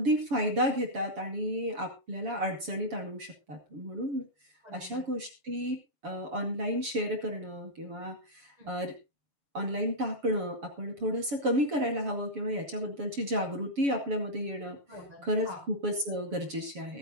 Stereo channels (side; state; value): left; late; 7.1 ms